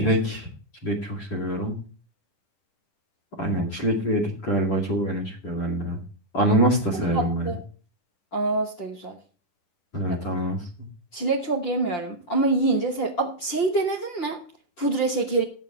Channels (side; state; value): right; late; 10 ms